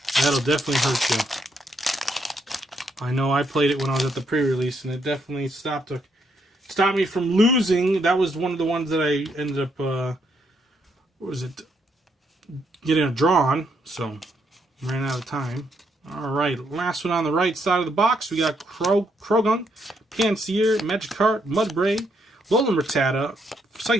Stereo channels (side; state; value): both; normal; correlation 0.76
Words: That'll definitely hurt you. I know I played it when I was at the pre-release, and it definitely stopped me from losing. That was one of the ones that I ended up, getting a draw on, so ran out of time. All right, last one on the right side of the box, we got Croagunk, Pansear, Magikarp, Mudbray, Alolan Rattata,